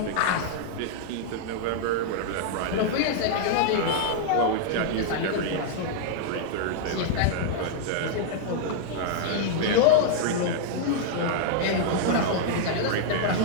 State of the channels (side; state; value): both; different; correlation -0.01